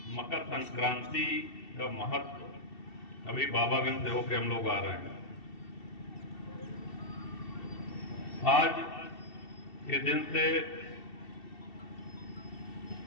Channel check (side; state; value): right; late; 2.7 ms